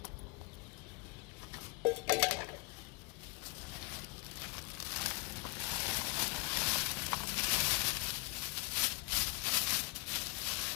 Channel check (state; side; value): quieter; right; 26.5 dB